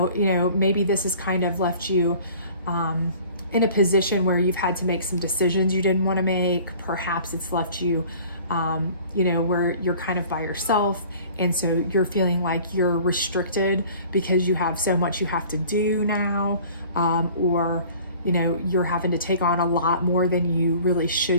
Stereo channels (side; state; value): both; inverted; correlation -0.49